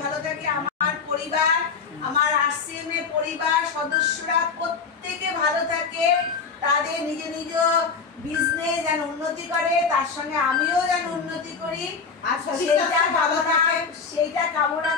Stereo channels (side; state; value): right; quieter; 5.2 dB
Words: ভালো থাকে। আমার পরিবার, আমার আরসিএম এর পরিবার সদস্যরা প্রত্যেকে ভালো থাকে, তাদের নিজ নিজ বিজনেস যেন উন্নতি করে, তার সঙ্গে আমিও যেন উন্নতি করি। আর সেইটা কামনা